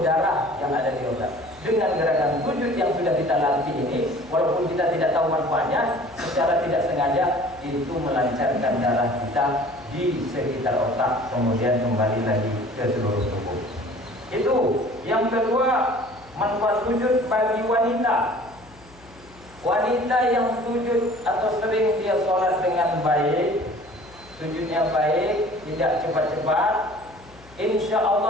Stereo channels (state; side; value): noise; left; hum, 24 dB below the sound